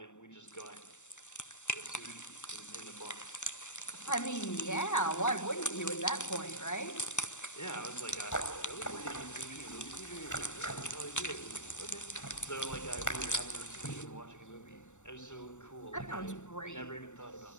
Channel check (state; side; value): late; right; 0.84 ms